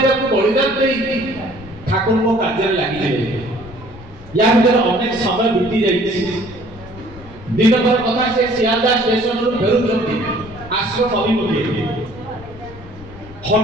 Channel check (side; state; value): left; noise; rumble, 18 dB below the sound